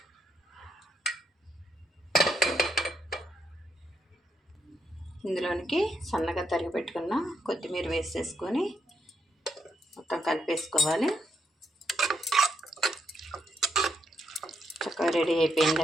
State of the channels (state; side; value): normal; both; correlation 0.78